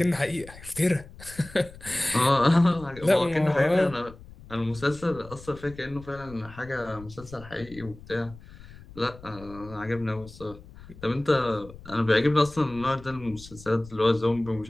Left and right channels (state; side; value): noise; left; rumble, 18 dB below the sound